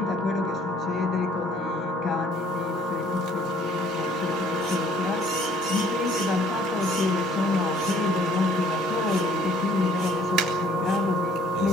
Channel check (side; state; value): both; normal; correlation 0.59